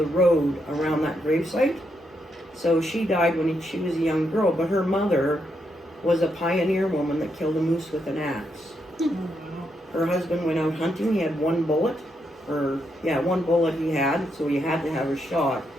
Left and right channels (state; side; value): normal; both; correlation 0.80